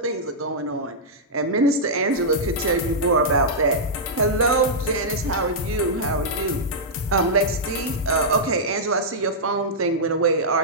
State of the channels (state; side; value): normal; both; correlation -0.10